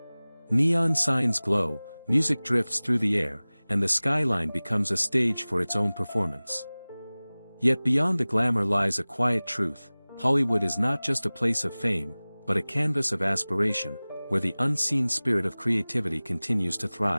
Neon signs glow, music drifts through the air, and the skyline becomes a stage for its own performance. Yet beyond the glamour lies a quiet truth: Hollywood is not just a place of fame, but a canvas of aspiration, where the unseen spirit of creativity continues to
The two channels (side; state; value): both; inverted; correlation -0.99